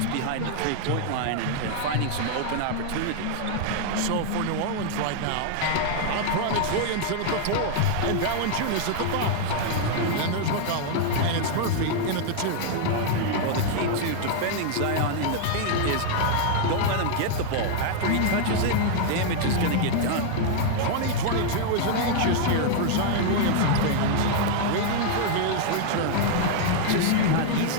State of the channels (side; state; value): both; different; correlation -0.01